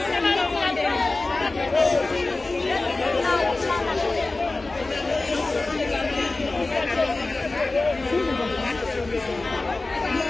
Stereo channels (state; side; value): quieter; right; 3.2 dB